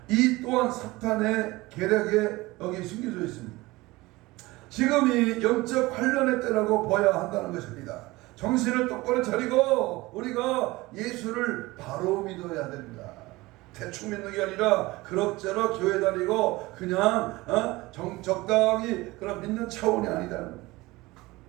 이 또한 사탄의 계략에 여기 숨겨져 있습니다. 지금이 영적 환란의 때라고 봐야 한다는 것입니다. 정신을 똑바로 차리고 우리가 예수를 바로 믿어야 됩니다. 대충 믿는 게 아니라 그럭저럭 교회 다니고 그냥 적당히 그런 믿는 차원이 아니다는 거예요.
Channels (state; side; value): quieter; left; 20.6 dB